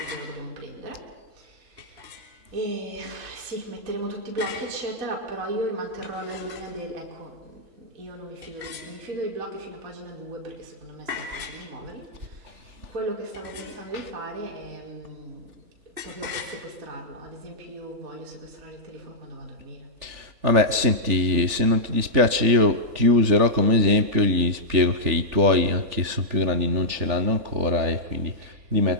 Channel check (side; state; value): left; late; 3.4 ms